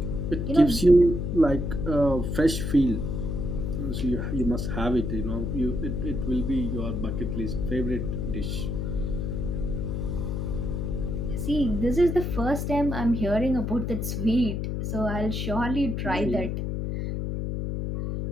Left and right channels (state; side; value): noise; left; hum, 2 dB below the sound